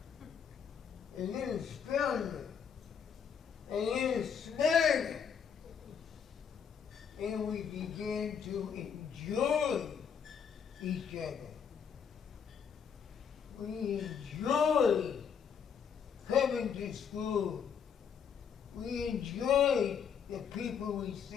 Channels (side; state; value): right; quieter; 7.2 dB